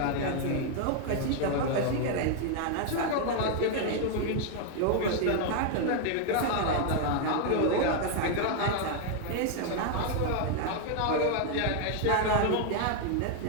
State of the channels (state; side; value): different; both; correlation 0.00